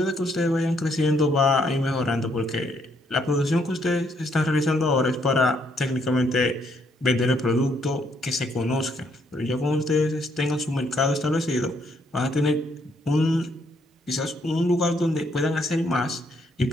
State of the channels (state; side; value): normal; both; correlation 0.71